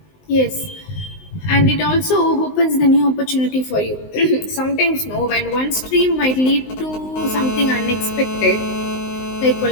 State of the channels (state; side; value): late; right; 19 ms